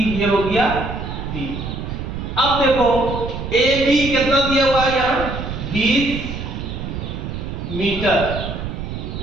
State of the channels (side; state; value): right; noise; rumble, 6 dB below the sound